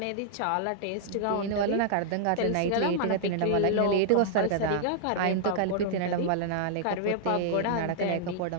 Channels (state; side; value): different; both; correlation -0.01